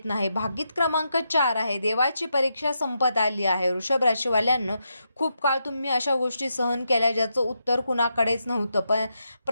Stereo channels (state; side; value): inverted; both; correlation -0.84